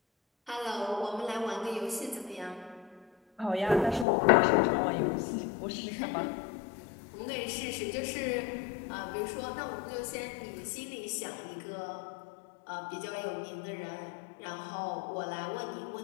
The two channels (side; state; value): right; drops out; at 4.0 s